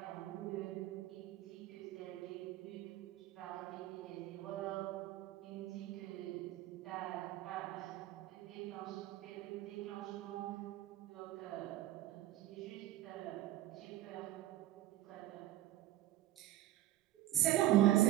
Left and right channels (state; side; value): quieter; left; 14.6 dB